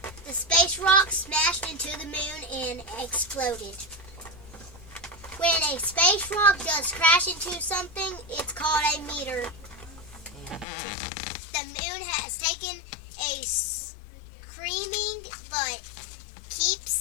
The space rock smashed into the moon and exploded. When a space rock does crash into something, it's called a meteor. The moon has taken a screaming but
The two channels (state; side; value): drops out; right; at 10.7 s